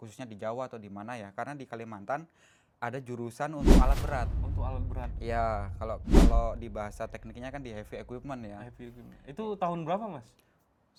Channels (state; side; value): identical; both; correlation 1.00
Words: di Jawa atau di mana ya. Karena di Kalimantan ada jurusan untuk alat berat. Untuk alat berat. Ya, kalau di bahasa tekniknya kan di heavy equipment ya. Heavy equipment. Itu tahun berapa Mas?